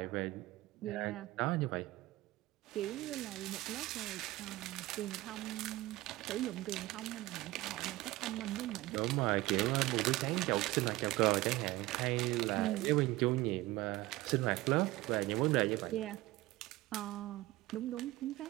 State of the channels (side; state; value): left; quieter; 18.5 dB